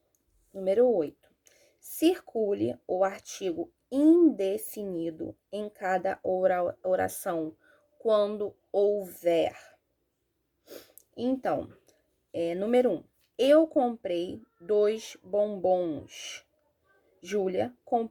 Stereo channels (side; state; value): both; identical; correlation 1.00